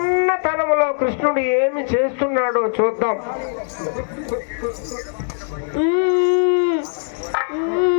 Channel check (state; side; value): silent; right; 62 dB below the other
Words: కృష్ణుడు ఏమి చేస్తున్నాడో చూద్దాం.